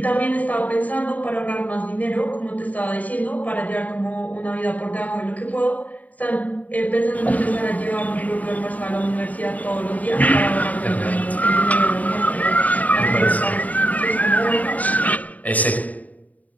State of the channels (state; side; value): late; right; 0.074 ms